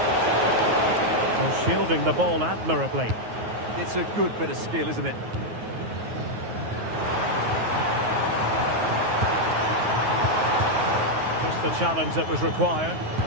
Shielding the ball admirably. It's a good bit of skill, isn't it? Just the challenge that was required.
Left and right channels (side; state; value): left; late; 9.4 ms